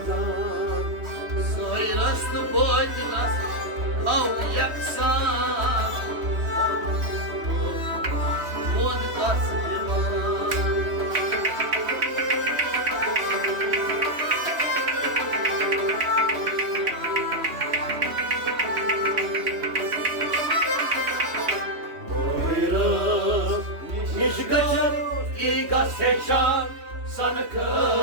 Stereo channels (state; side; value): late; left; 3.1 ms